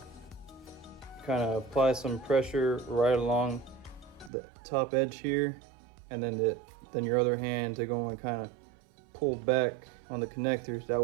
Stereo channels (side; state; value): left; drops out; at 4.3 s